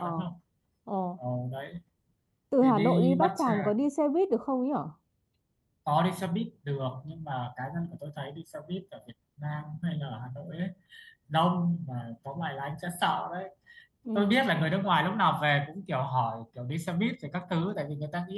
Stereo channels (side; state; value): both; identical; correlation 1.00